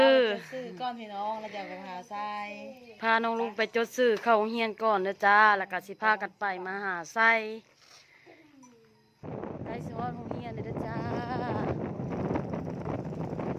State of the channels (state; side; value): identical; both; correlation 1.00